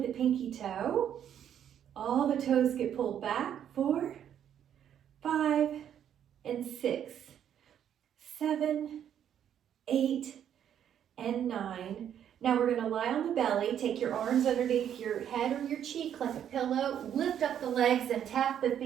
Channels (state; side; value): quieter; left; 9.6 dB